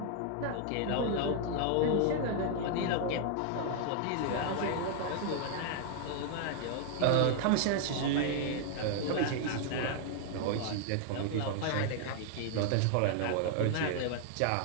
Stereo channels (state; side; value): different; both; correlation 0.00